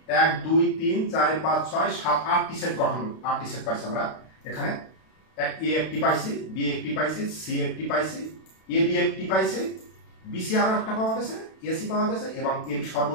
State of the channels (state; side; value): late; right; 32 ms